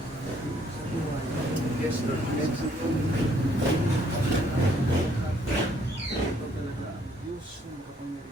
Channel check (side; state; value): both; normal; correlation 0.66